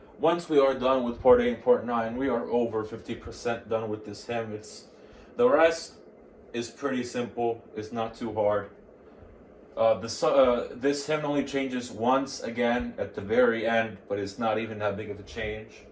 Once we are done with part 8 and part 9, we are over 50% done with this hymn. The rest is pretty simple. It's not too hard. This hymn only changes once again at the very end, but it's not even that big of a change.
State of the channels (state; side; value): identical; both; correlation 1.00